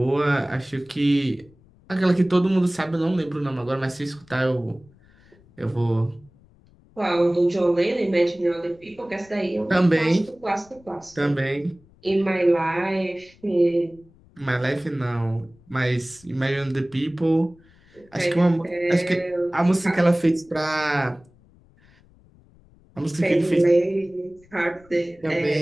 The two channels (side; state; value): left; noise; rumble, 28 dB below the sound